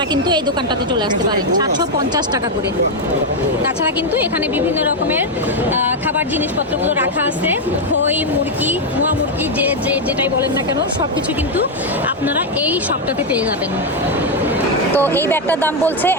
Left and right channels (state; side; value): normal; both; correlation 0.03